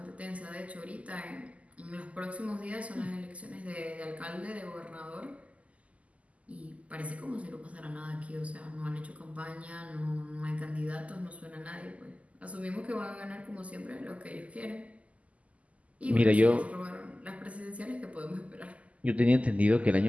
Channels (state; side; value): late; left; 0.068 ms